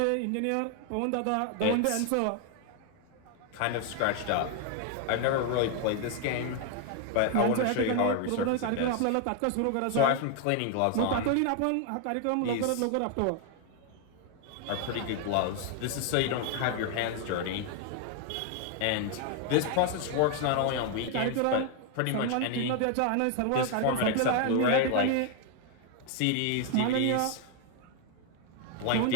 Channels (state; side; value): different; both; correlation 0.00